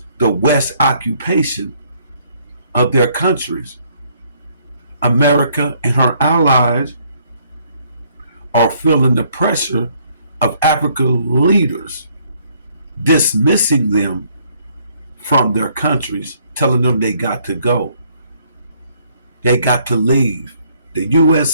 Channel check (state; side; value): inverted; both; correlation -0.66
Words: the West occupation of their countries. America and her allies are feeling the pressure of African leaders, dismissing them from their countries, telling them they got to go. They got to leave. The